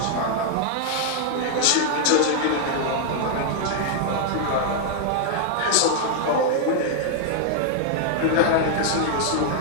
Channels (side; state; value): both; different; correlation 0.00